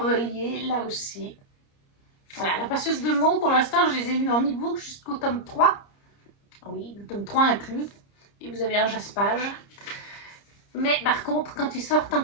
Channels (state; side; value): late; right; 30 ms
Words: là aussi. Voilà, La passeuse de mots, pour l'instant, je les ai lus en e-book jusqu'au tome 3. Oui, le tome 3 inclus. Et vous avez un jaspage. Mais par contre, quand ils sortent en